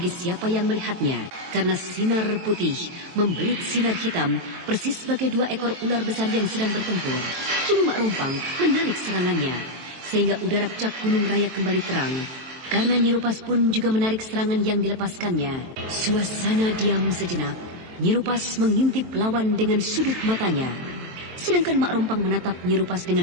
siapa yang melihatnya. Karena sinar putih membelit sinar hitam persis sebagai dua ekor ular besar yang sedang bertempur. Kini Mak Rompang menarik serangannya, sehingga udara puncak Gunung Raya kembali terang. Karena Nyerupas pun juga menarik serangan yang dilepaskannya. Suasana diam sejenak. Nyerupas mengintip lawan dengan sudut matanya. Sedangkan Mak Rompang menatap Nyerupas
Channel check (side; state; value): left; late; 22 ms